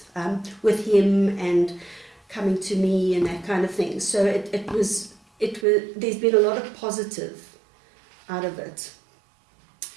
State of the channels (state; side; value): drops out; left; at 5.7 s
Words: with him and coming to me and that kind of thing. So it was. There's been a lot of positive out of it.